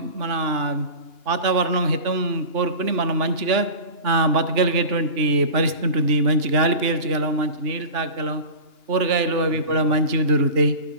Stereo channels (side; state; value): left; late; 2.9 ms